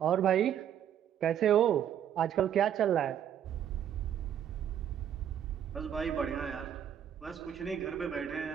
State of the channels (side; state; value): left; quieter; 9.6 dB